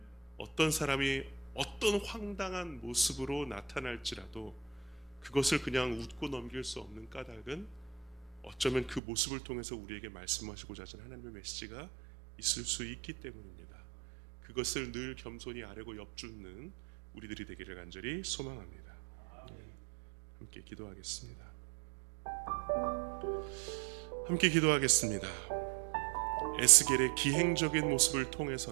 어떤 사람이 어떤 황당한 모습으로 나타날지라도 그것을 그냥 웃고 넘길 수 없는 까닭은 어쩌면 그 모습을 통해서 우리에게 말씀하시고자 하시는 하나님의 메시지가 있을 수 있기 때문입니다. 그것을 늘 겸손히 아뢰고 엿줍는 우리들이 되기를 간절히 소망합니다. 함께 기도하겠습니다. 함께 기도하겠습니다. 에스겔의 기행적인 모습을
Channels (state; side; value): drops out; left; at 9.0 s